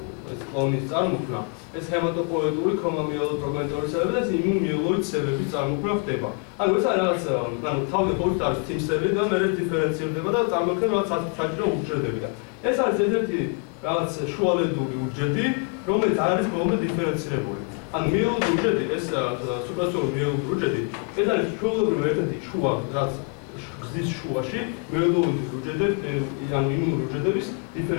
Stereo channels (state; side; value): quieter; right; 35.7 dB